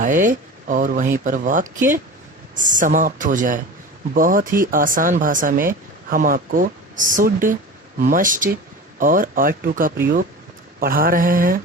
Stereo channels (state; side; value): normal; both; correlation 0.33